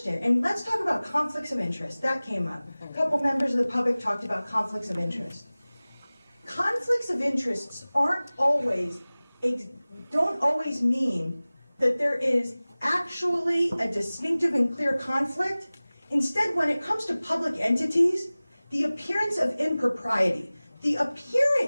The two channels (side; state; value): both; inverted; correlation -0.99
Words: and let's talk about conflicts of interest. That came up. A couple members of the public talked about conflicts of interest. Conflicts of interests don't always mean that there is actually a distinctive and clear conflict. Instead, when it comes to public entities, the appearance of impropriety, the